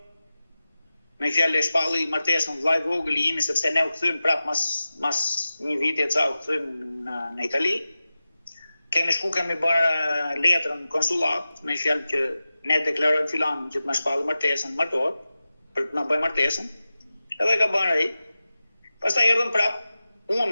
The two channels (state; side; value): inverted; both; correlation -0.94